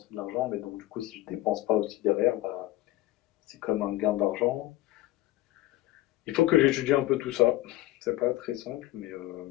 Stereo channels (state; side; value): quieter; right; 16.1 dB